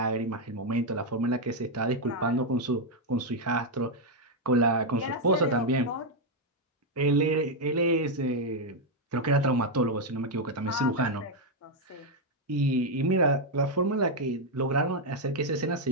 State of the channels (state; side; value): normal; both; correlation 0.01